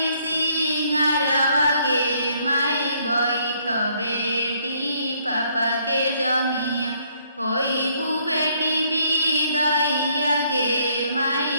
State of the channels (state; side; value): inverted; both; correlation -0.67